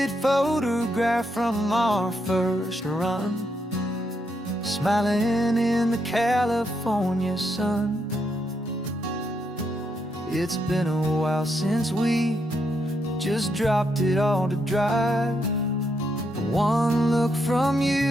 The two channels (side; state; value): both; normal; correlation 0.79